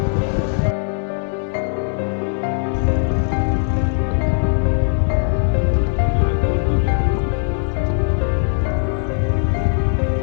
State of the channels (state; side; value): silent; right; digital silence